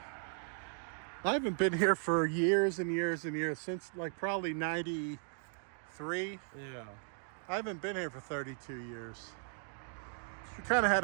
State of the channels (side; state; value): left; silent; 53 dB below the other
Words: I haven't been here for years and years and years, since like probably 93. Yeah. I haven't been here for 32 years. We kind of had